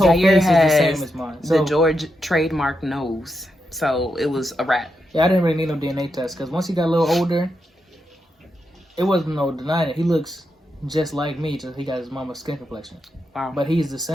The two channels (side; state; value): both; normal; correlation 0.85